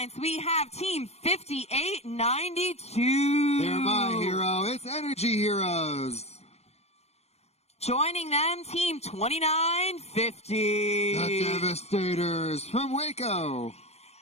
we have Team 5892. They're my hero. It's Energy Heroes. Joining them, Team 2950. The Devastators from Waco.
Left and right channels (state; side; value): late; right; 0.31 ms